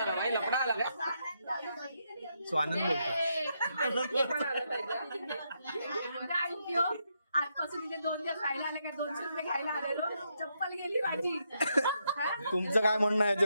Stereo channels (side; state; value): both; inverted; correlation -0.80